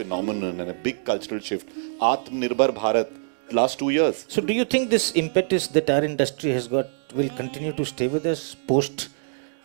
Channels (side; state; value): left; silent; digital silence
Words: and a big cultural shift. Atmanirbhar Bharat, last 2 years. So do you think this impetus that our industry has got will continue to stay with us post